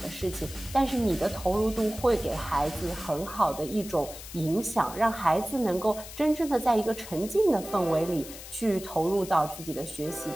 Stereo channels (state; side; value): noise; left; hiss, 13 dB below the sound